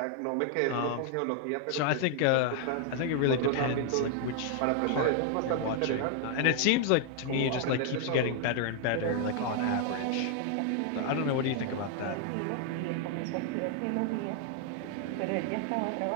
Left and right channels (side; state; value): both; different; correlation 0.00